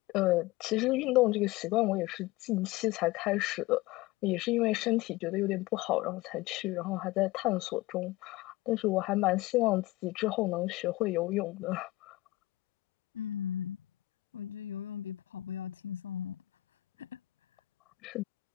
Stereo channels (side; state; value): right; quieter; 18.6 dB